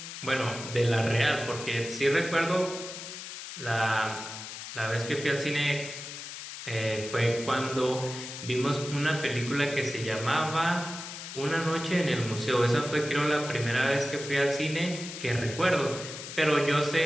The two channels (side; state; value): left; noise; hiss, 10 dB below the sound